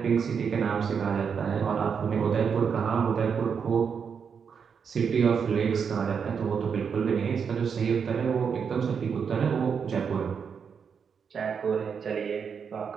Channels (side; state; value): left; quieter; 6.5 dB